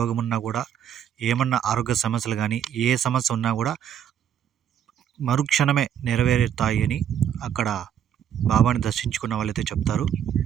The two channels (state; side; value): quieter; left; 9.4 dB